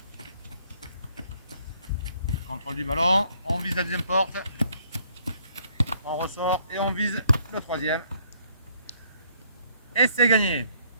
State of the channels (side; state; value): both; inverted; correlation -0.65